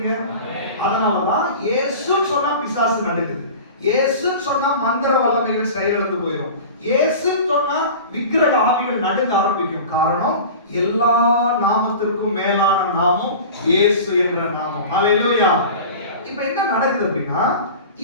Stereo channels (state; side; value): inverted; both; correlation -0.36